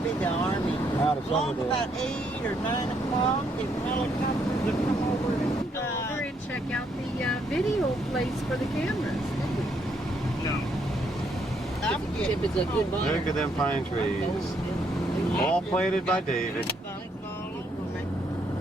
be the Army. Out of Along Summerdale. about 8 or 9 o'clock, the helicopters would come over and Go over and check out the video place for the cameras. If it's a good one. Look at them pine trees. All planted by David.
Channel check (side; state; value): both; normal; correlation 0.72